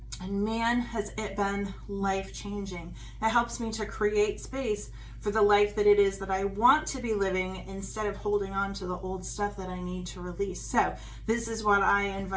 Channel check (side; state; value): both; identical; correlation 1.00